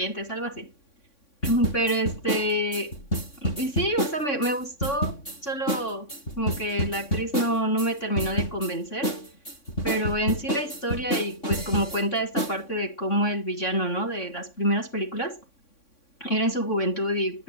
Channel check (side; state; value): right; late; 3.6 ms